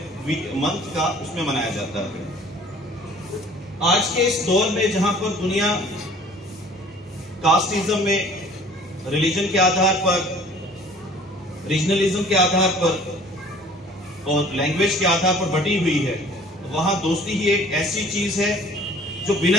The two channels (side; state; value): both; normal; correlation 0.51